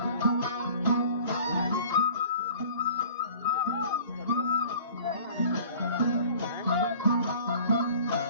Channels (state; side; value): inverted; both; correlation -0.47